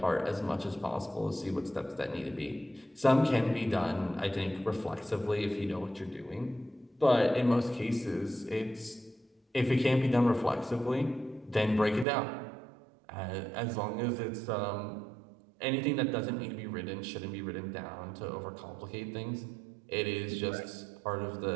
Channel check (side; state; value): left; drops out; at 12.1 s